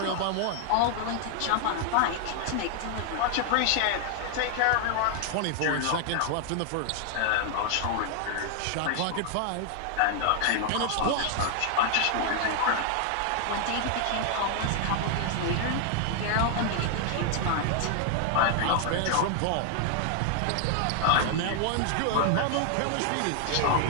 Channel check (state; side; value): different; both; correlation 0.00